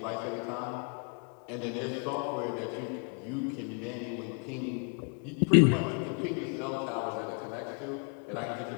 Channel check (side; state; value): right; quieter; 38.8 dB